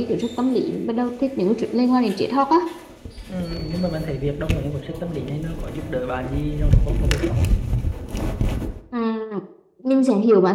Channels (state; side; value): identical; both; correlation 1.00